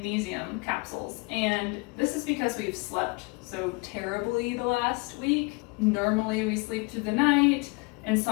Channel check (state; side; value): quieter; right; 29.3 dB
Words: capsules. And this is because we've slept so terribly the last week. Normally we sleep through the night.